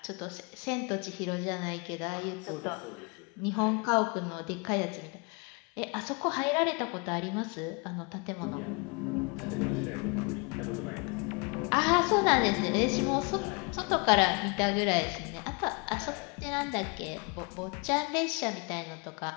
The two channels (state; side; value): quieter; right; 31.2 dB